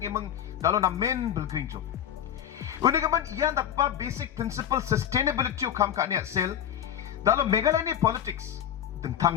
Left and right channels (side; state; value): right; quieter; 9.9 dB